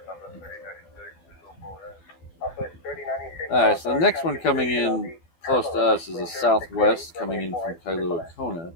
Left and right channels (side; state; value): right; late; 12 ms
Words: Alright, so the next one coming in close to us is a Southwest coming in from Kailua Kona.